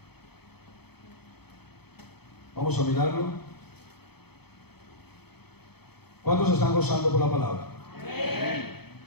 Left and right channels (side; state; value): right; late; 0.97 ms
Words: Vamos a mirarlo. ¿Cuántos están gozando por la palabra? Amén.